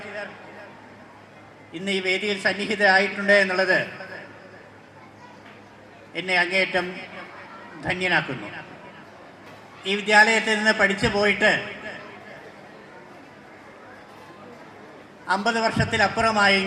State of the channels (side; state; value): both; identical; correlation 1.00